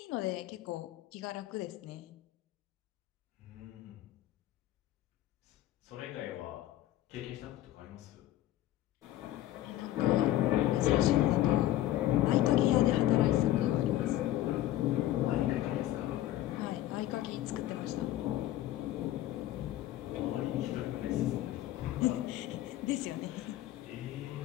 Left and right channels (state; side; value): quieter; right; 14.0 dB